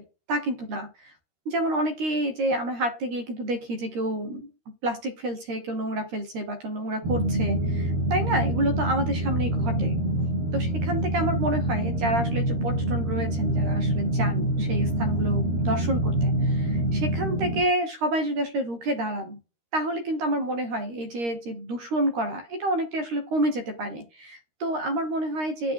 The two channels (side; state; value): left; late; 13 ms